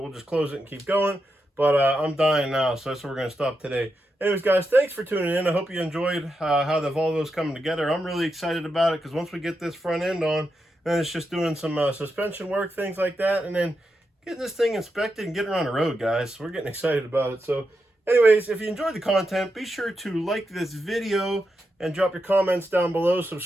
we'll just close it and keep going. But I'm dying now, so that's where we're going to stop today. Anyways, guys, thanks for tuning in. I hope you enjoyed how the Volvo's coming together. I'm really excited about it because once we get this front end on, then it's just doing some suspension work, things like that, and then getting this thing inspected and getting her on the road, guys. We're getting excited about it. So anyways, if you enjoyed the content, be sure to like this video and drop your comments down below.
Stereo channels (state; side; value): normal; both; correlation 0.86